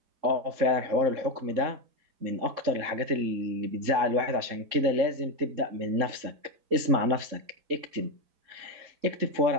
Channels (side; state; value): left; late; 3.7 ms